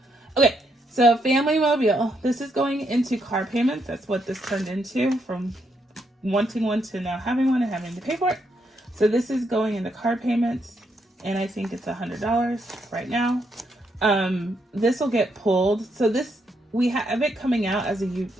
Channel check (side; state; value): both; normal; correlation 0.77